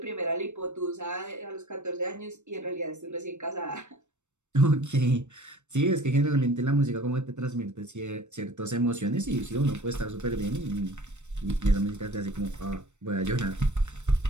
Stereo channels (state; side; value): late; left; 0.84 ms